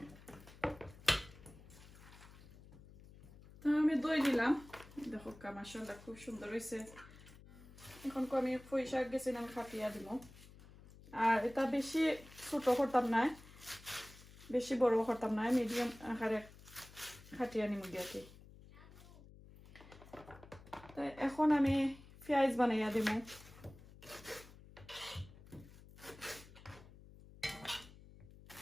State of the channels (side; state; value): left; noise; hum, 20 dB below the sound